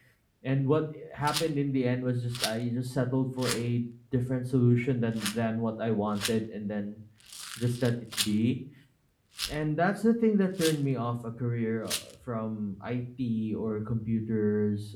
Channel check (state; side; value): identical; both; correlation 1.00